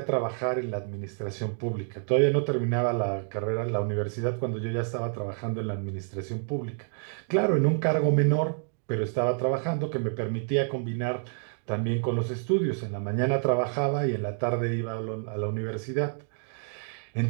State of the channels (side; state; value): left; silent; 58 dB below the other